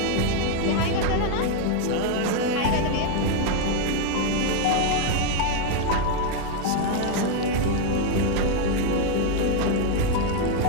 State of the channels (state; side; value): different; both; correlation 0.01